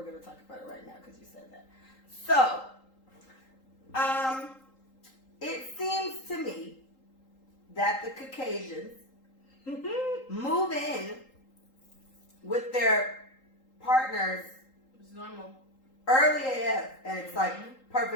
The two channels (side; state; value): right; late; 3.8 ms